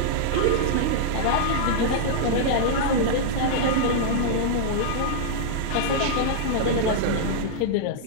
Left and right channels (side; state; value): both; different; correlation -0.02